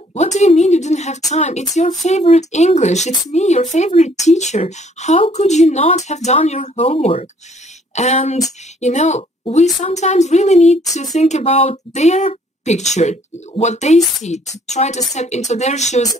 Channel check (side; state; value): both; normal; correlation 0.61